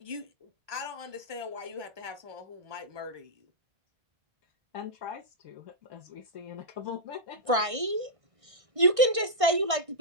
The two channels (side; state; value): left; late; 1.6 ms